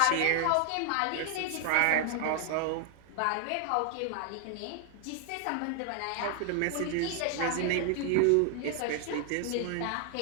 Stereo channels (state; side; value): different; both; correlation 0.00